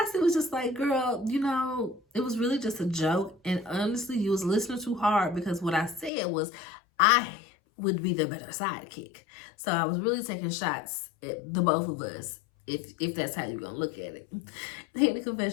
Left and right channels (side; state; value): right; drops out; at 6.1 s